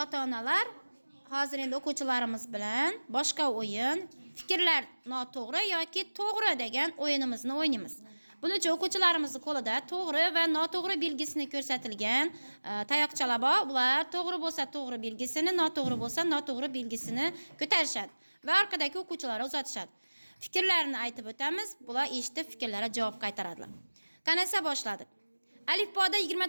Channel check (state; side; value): inverted; both; correlation -1.00